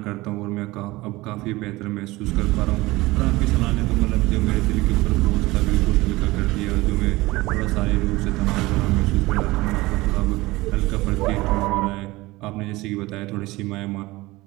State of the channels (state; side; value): quieter; left; 20.2 dB